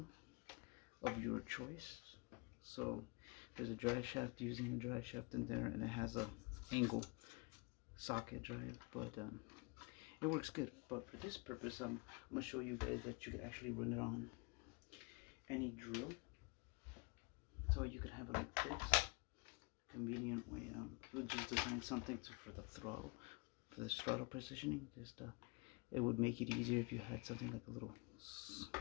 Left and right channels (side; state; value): right; quieter; 29.6 dB